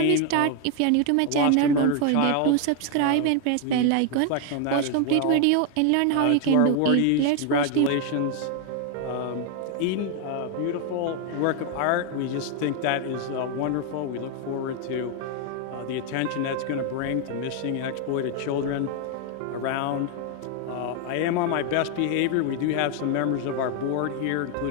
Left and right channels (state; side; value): different; both; correlation 0.00